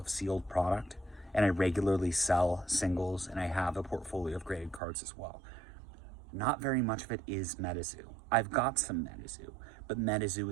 sealed product, and I regularly sell singles, and I have a portfolio of graded cards as well. Not very much of it is Metazoo. I've got some Metazoo, but Metazoo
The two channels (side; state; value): left; drops out; at 4.8 s